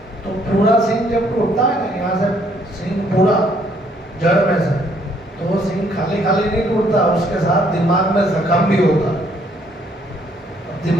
تو پورا سینگ جب ٹوٹتا ہے نا یہاں سے سینگ پورا جڑ میں سے, تو وہ سینگ خالی خالی نہیں ٹوٹتا, اس کے ساتھ دماغ میں زخم بھی ہوتا.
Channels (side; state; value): both; normal; correlation 0.66